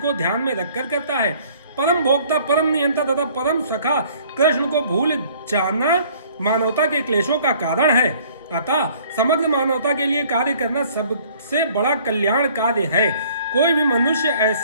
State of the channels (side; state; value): both; inverted; correlation -0.56